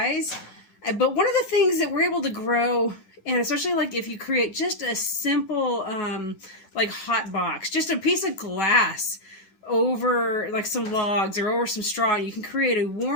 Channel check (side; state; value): right; late; 10 ms